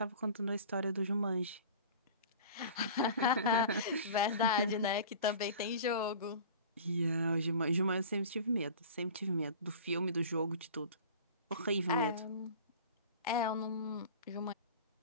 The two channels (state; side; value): inverted; both; correlation -0.40